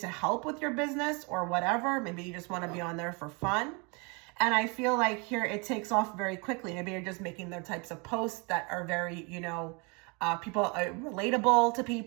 help with your business or whatever. Maybe you just want to be on there for fun. And I feel like here it takes off very quickly. Maybe you're just making the types of posts that are very, you know, people are relatable to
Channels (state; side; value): quieter; left; 31.1 dB